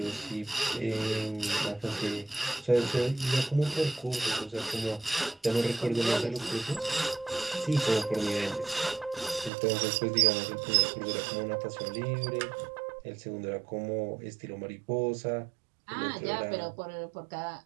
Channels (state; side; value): drops out; left; at 9.5 s